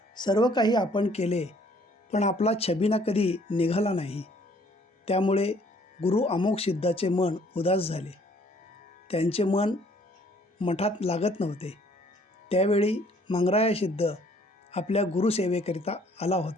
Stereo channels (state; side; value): normal; both; correlation 0.60